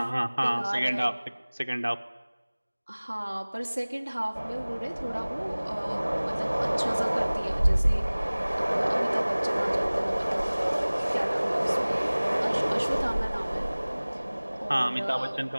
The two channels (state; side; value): inverted; both; correlation -1.00